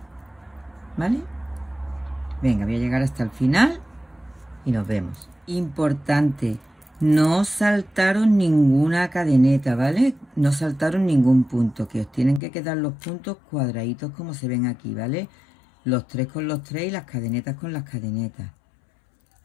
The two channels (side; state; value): right; drops out; at 12.4 s